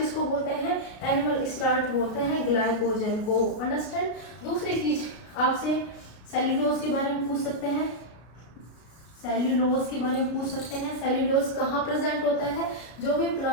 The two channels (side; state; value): right; late; 33 ms